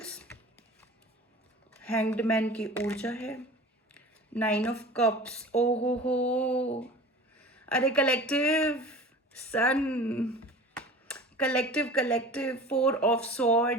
hanged man की ऊर्जा है, 9 ऑफ कप्स, ओहो हो, अरे collective sun, collective collective 4 of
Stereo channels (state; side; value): normal; both; correlation 0.39